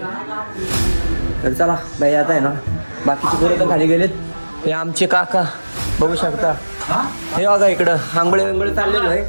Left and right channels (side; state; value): both; inverted; correlation -1.00